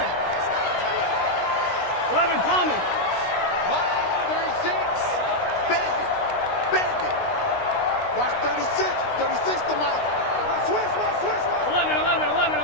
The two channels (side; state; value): right; late; 16 ms